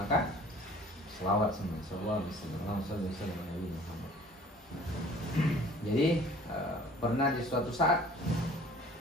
selawat semua, sallallahu alaihi wasallam Nabi Muhammad. Jadi pernah di suatu saat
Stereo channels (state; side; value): normal; both; correlation 0.50